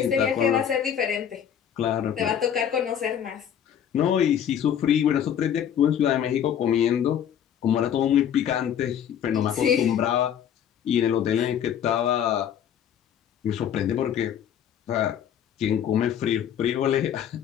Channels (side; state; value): right; quieter; 9.2 dB